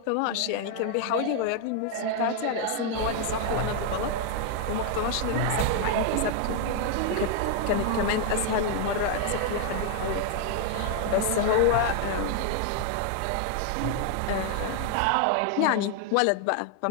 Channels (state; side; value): different; both; correlation 0.00